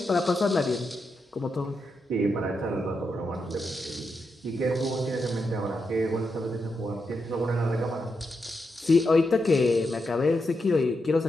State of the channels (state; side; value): normal; both; correlation 0.85